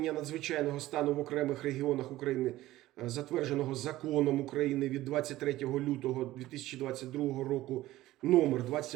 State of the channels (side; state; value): left; quieter; 16.1 dB